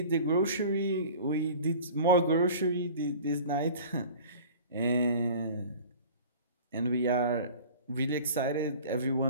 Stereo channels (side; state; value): both; inverted; correlation -0.43